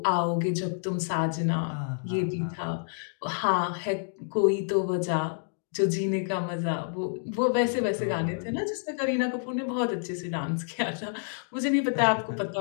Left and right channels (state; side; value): silent; right; digital silence